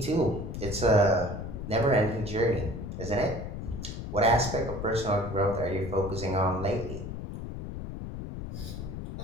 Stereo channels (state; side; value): noise; left; rumble, 7 dB below the sound